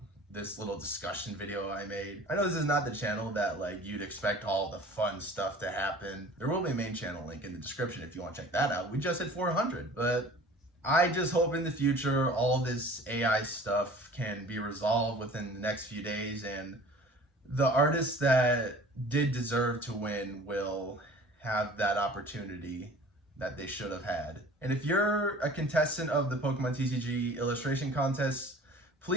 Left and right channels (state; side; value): normal; both; correlation 0.45